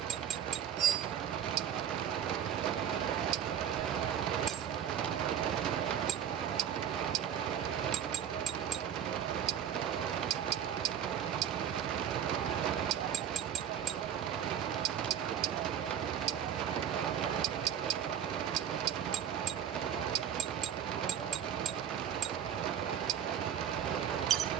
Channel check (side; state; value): left; quieter; 9.3 dB